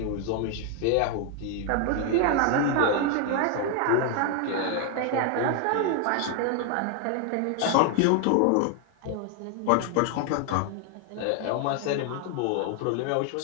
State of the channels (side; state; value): both; different; correlation 0.00